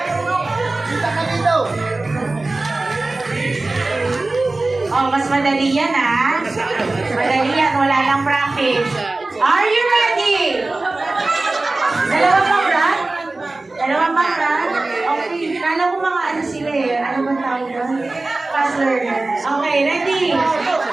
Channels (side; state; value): left; quieter; 3.1 dB